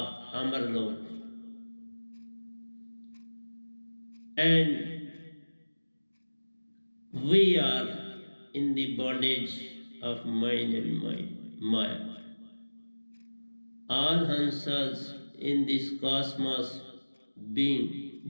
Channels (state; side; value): inverted; both; correlation -1.00